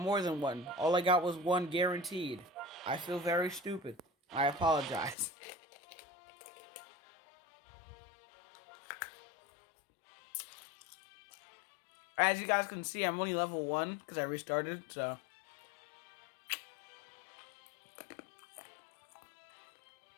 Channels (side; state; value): right; drops out; at 5.2 s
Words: than one. All I got was one guaranteed. I feel very stupid. I apologize. As you guys can see, I'm only level 1 because I restarted, so...